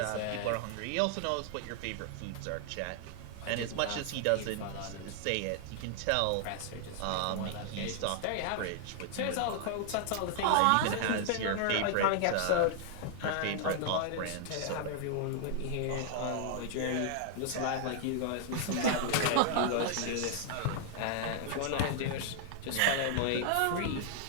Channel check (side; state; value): both; different; correlation -0.01